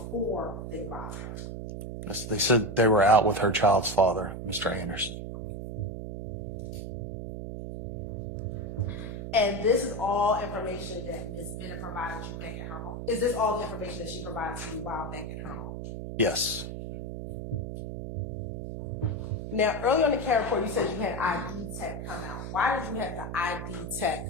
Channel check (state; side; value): noise; right; hum, 6 dB below the sound